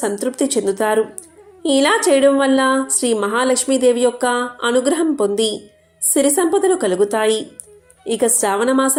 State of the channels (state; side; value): identical; both; correlation 1.00